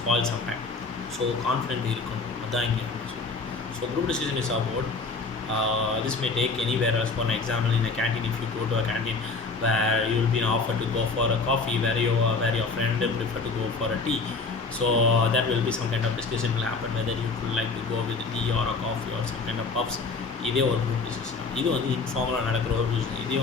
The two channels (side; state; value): right; quieter; 4.1 dB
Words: sometime. So confident இருக்கணும், அதான் இங்கே சொல்லுங்கள். So group decision is about this may take anywhere else. For an example, in a canteen, if you go to a canteen where you will be offered to go for a coffee, where your friend prefer to go for a tea. So that will be some kind of discussion will happen whether you would like to go with a tea or a coffee or some kind of puffs. இதே ஒரு group discussion. இது வந்து இன்ஃபார்மலாக நடக்கிற ஒரு டிஸ்கஷன். இதே